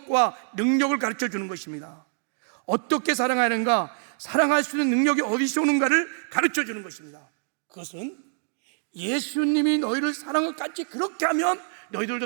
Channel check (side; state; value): left; silent; 60 dB below the other